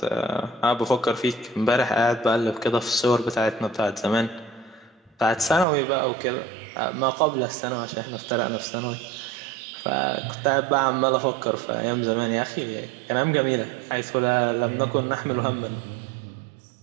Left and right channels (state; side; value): drops out; left; at 5.7 s